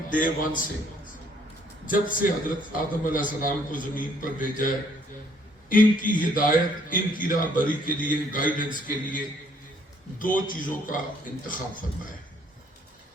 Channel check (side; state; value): both; normal; correlation 0.64